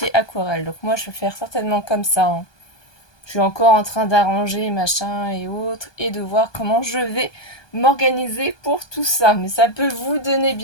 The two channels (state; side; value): late; right; 1.2 ms